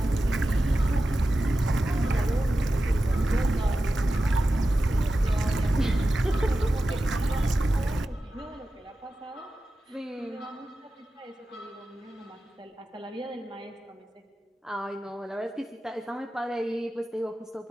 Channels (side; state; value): both; normal; correlation 0.93